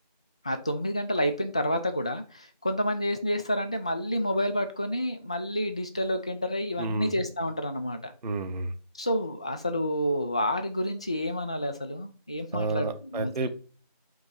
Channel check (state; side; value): inverted; both; correlation -0.77